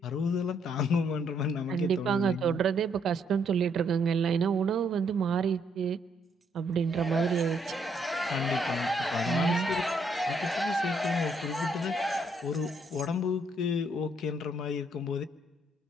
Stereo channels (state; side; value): normal; both; correlation 0.72